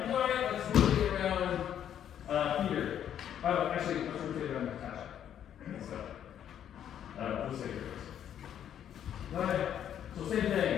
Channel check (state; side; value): quieter; right; 9.8 dB